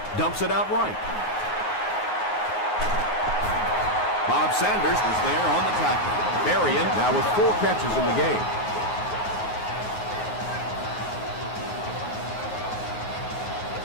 Dumps it out right. Bob Sanders was there on the tackle. Berrien now with 4 catches in the game.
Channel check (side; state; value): right; late; 9.4 ms